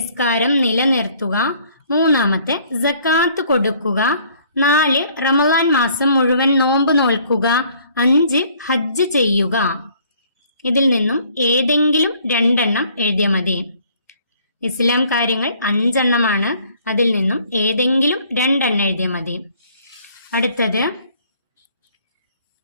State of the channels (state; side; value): inverted; both; correlation -0.59